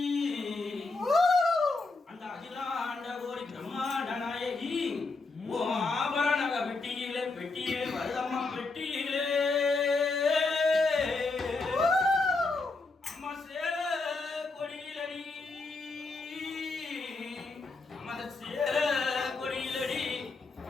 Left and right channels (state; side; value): quieter; right; 3.7 dB